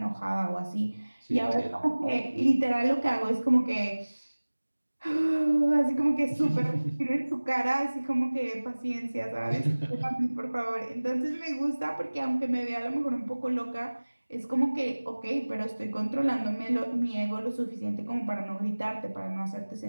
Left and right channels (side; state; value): both; inverted; correlation -1.00